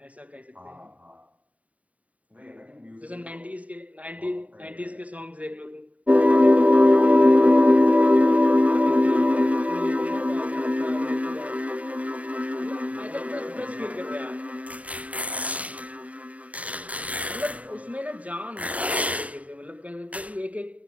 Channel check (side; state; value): left; late; 0.068 ms